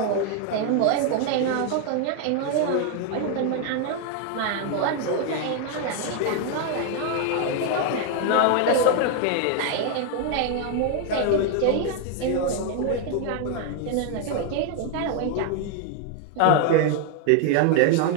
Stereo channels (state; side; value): different; both; correlation 0.00